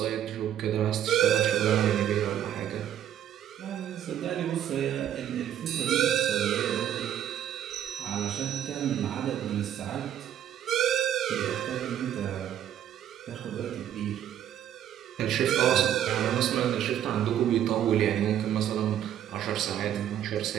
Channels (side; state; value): left; quieter; 10.7 dB